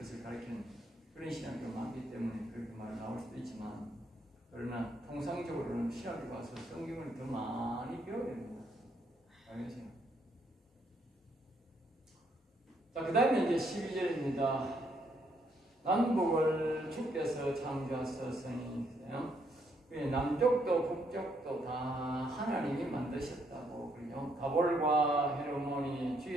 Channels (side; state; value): both; normal; correlation 0.73